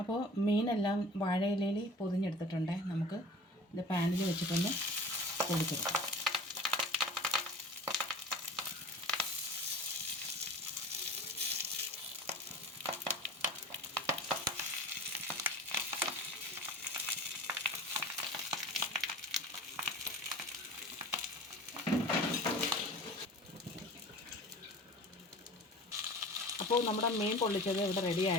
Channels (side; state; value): both; normal; correlation 0.39